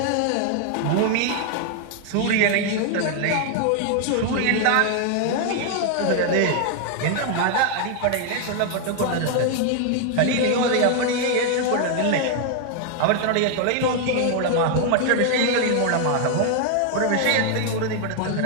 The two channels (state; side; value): different; both; correlation 0.00